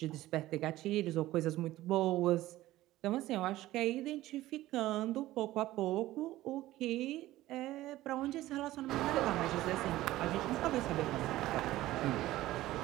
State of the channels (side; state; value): left; quieter; 16.0 dB